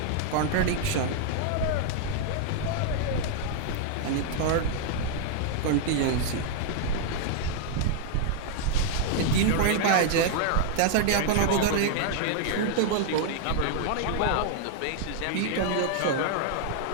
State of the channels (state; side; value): different; both; correlation -0.01